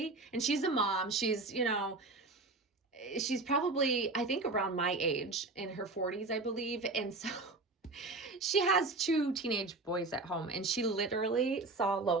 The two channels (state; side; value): quieter; left; 3.3 dB